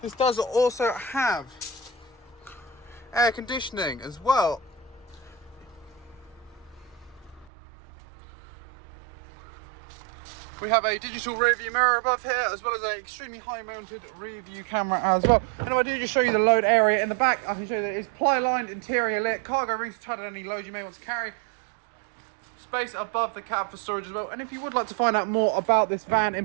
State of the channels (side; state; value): left; drops out; at 7.5 s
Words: This does also have air conditioning as well. We have a digital rear view mirror above here, as well as an extremely high mounted rear view camera as well. And if I do just show you the load area in the back, I can show you that it's ply lined, interior lit, cargo rings to tighten any load you may want to carry. Space above the cab for storage as well. And if you would like to find out more about this van in